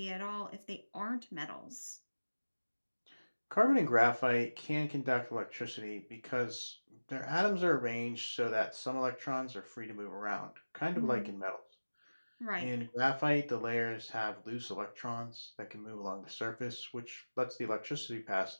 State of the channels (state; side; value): inverted; both; correlation -1.00